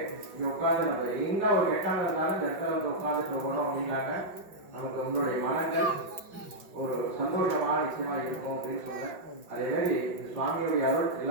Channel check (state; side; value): late; left; 5.5 ms